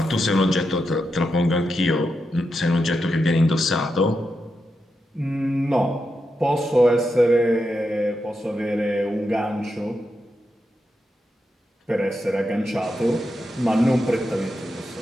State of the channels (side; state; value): both; normal; correlation 0.87